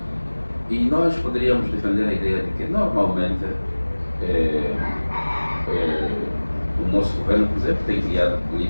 E nós poderíamos defender a ideia de que, normalmente, o nosso governo, por exemplo, tem criado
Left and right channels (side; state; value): both; inverted; correlation -1.00